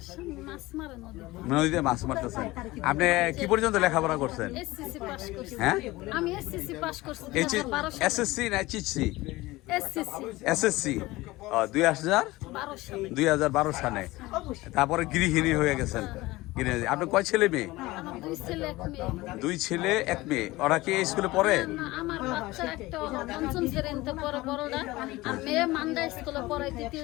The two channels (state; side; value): quieter; right; 19.6 dB